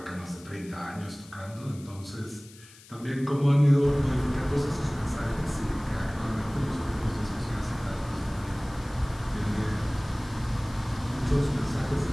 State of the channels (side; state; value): left; noise; hiss, 22 dB below the sound